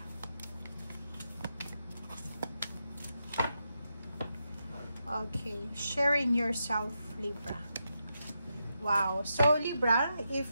Okay, sharing yourself, Libra. Wow. So, Libra,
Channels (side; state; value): both; inverted; correlation -0.85